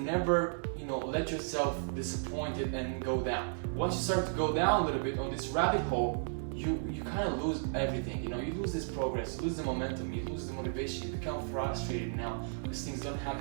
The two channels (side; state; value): left; silent; digital silence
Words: let yourself disappointed and go down. Once you start to go down a little bit on this rabbit hole, you kind of lose everything. You lose this progress, you lose the momentum, you lose the motivation, you become frustrated now because things don't